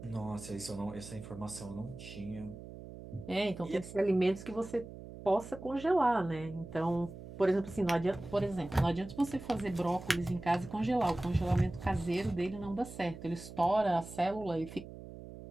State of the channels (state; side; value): noise; right; hum, 13 dB below the sound